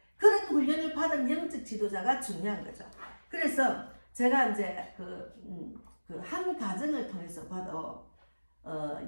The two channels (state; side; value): inverted; both; correlation -1.00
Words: 그런 훈련을 받은 영적 지도자가 중요한 거죠. 그래서 제가 이제 한 가정을 통해서 봐도